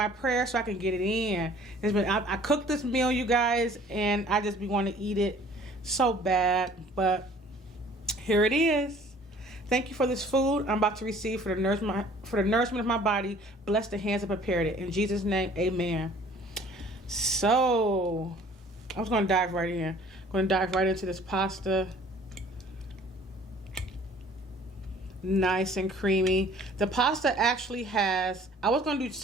prayer so I can get it in. I cooked this meal, you guys, and I just be wanting to eat it so bad, but here it is. Thank you for this food I'm about to receive for the nourishment of my body. Bless the hands that prepared it. In Jesus' name, amen. So, I was going to dive right in. I'm going to dive right into this pasta. Nice and creamy. The pasta actually has, I was going to do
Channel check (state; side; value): normal; both; correlation 0.53